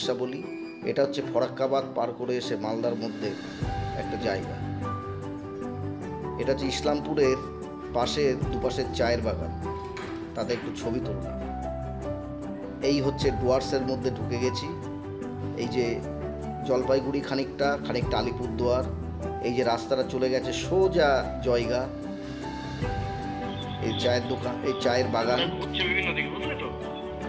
এটা হচ্ছে ফরাক্কাবাদ পার করে এসে মালদার মধ্যে একটা জায়গা। এটা হচ্ছে ইসলামপুরের পাশের দুপাশের চায়ের বাগান, তাতে একটু ছবি তুললাম। এই হচ্ছে ডুয়ার্সের মধ্যে ঢুকে গেছি। এই যে জলপাইগুড়ি খানিকটা আলিপুরদুয়ার, এই যে রাস্তাটা চলে গেছে সোজা জয়গা। এই চায়ের দোকান, এই চায়ের বাগান, বিভিন্ন দিকে বুঝলে তো,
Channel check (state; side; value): identical; both; correlation 1.00